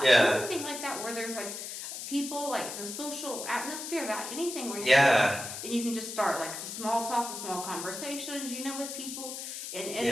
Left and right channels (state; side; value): noise; left; hiss, 7 dB below the sound